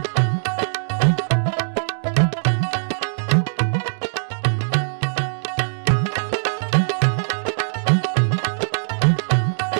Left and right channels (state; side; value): silent; left; digital silence